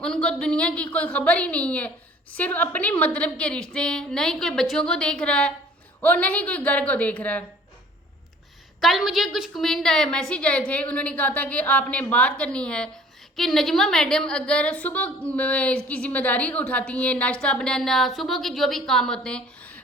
दुनिया की कोई खबर ही नहीं है, सिर्फ अपने मतलब के रिश्ते हैं। न ही कोई बच्चों को देख रहा है और न ही कोई घर को देख रहा है। कल मुझे कुछ कमेंट आए, मैसेज आए थे, उन्होंने कहा था कि आपने बात करनी है कि नजमा मैडम अगर सुबह की जिम्मेदारी उठाती हैं, नाश्ता बनाना, सुबह के जो भी काम होते हैं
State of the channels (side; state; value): both; normal; correlation 0.51